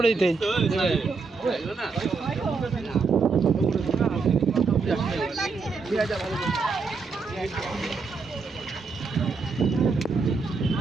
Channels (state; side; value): quieter; left; 4.6 dB